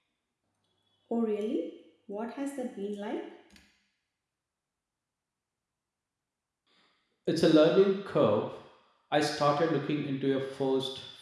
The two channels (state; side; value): identical; both; correlation 1.00